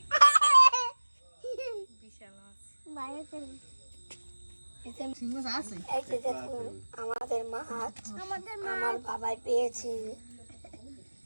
বিশাল মাছ বাইরে চলে এই যে সিংহ আছে এই যে দেখুন আমাদের মাছ আমাদের মা আমার বাবাই পেয়েছে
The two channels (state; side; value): inverted; both; correlation -1.00